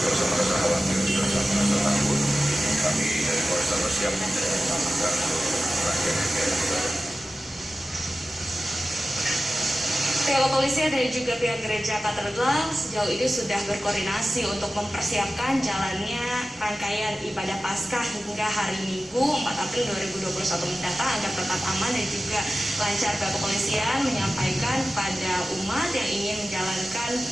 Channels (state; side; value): normal; both; correlation 0.95